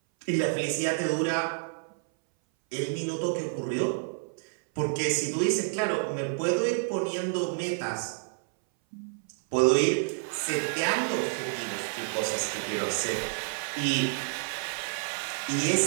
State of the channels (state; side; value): silent; left; 59 dB below the other